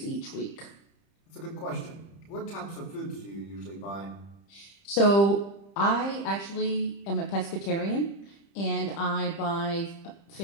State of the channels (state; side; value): late; right; 30 ms